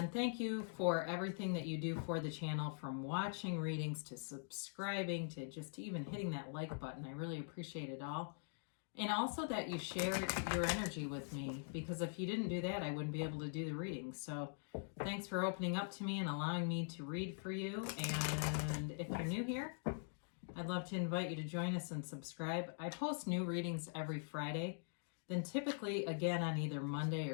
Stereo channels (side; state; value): right; silent; digital silence